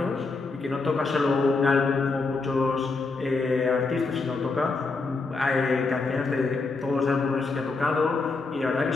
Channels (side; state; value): right; quieter; 3.9 dB